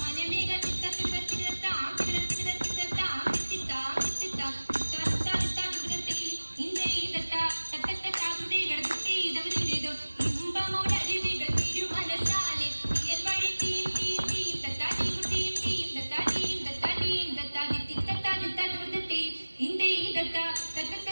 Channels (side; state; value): both; inverted; correlation -1.00